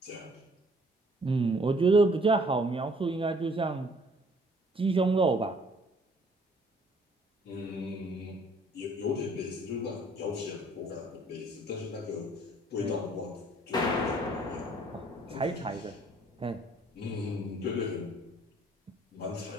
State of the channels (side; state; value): both; normal; correlation 0.60